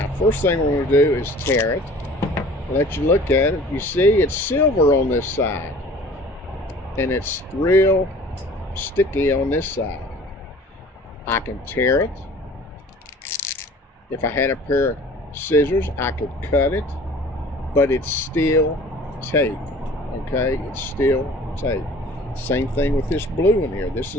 first thing we're going to do is tear it. Let you look at it. You see it's silver on this side and it's real sticky on this side. I can tear it. If I had a pair of scissors, I could cut it, but it's still tape. Okay, it's still tape. Same thing with this blue in here. This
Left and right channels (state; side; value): normal; both; correlation 0.47